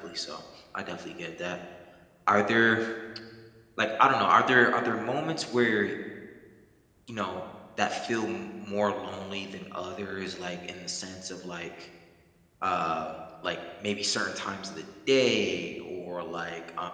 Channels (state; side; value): identical; both; correlation 1.00